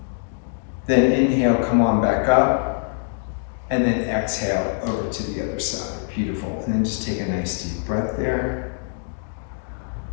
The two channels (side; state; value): right; silent; digital silence